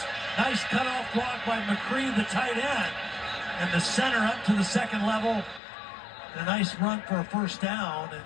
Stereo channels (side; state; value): right; drops out; at 5.6 s